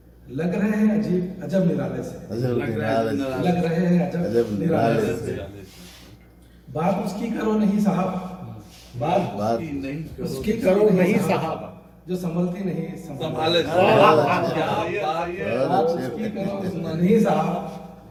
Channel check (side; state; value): both; identical; correlation 1.00